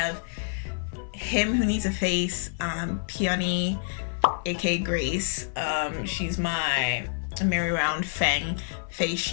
him who needs a face, Peony, aka Grace. She's my Merry Round Fang face.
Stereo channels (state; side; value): silent; right; 55 dB below the other